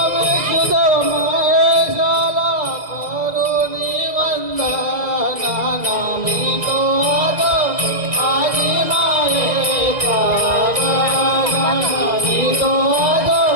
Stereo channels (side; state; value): left; late; 2.0 ms